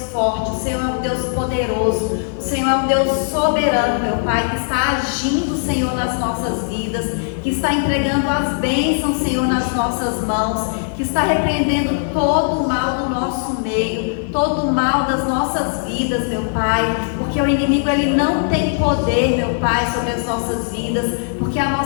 forte, o Senhor é um Deus poderoso, o Senhor é um Deus soberano, meu Pai, que está agindo, Senhor, nas nossas vidas, que está entregando as bênçãos, Senhor, nas nossas mãos, que está repreendendo todo o mal do nosso meio, todo o mal das nossas vidas, meu Pai, porque o inimigo, ele não tem poder, meu Pai, sobre as nossas vidas, porque a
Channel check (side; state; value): right; silent; digital silence